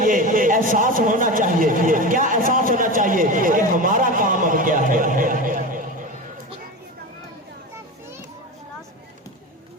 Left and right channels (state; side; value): normal; both; correlation 0.25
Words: एहसास होना चाहिए। क्या एहसास होना चाहिए कि हमारा काम अब क्या है,